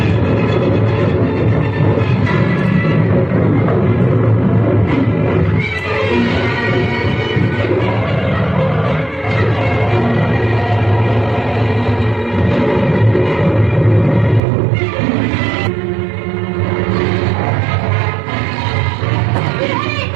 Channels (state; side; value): drops out; left; at 14.4 s